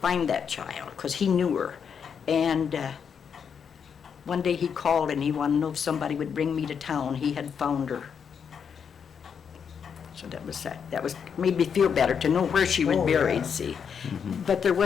that child, because he knew her. And one day he called and he wanted to know if somebody would bring me to town. He had found her. So that was sad. That made me feel better to know where she was buried, see. But there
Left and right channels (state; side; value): quieter; right; 7.0 dB